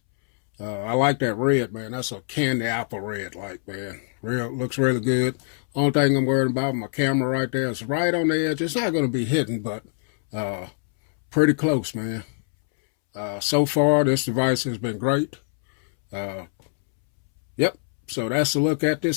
I like that red, man. That's a candy apple red, like, man. Looks really good. Only thing I'm worried about, my camera right there is right on the edge. It's not going to be hidden, but pretty close, man. So far, this device has been great. Yep. So that's a look at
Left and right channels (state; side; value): silent; right; 63 dB below the other